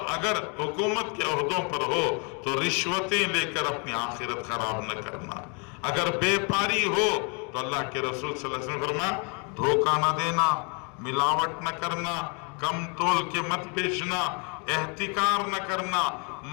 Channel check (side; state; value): right; quieter; 35.3 dB